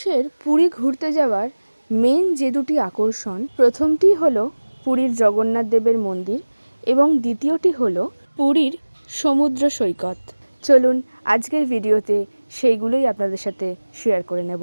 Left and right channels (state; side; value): inverted; both; correlation -1.00